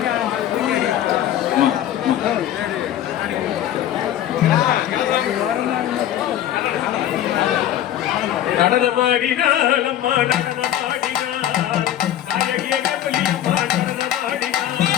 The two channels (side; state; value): right; quieter; 11.7 dB